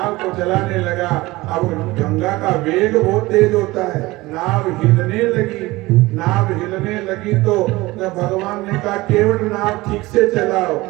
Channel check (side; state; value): left; quieter; 20.2 dB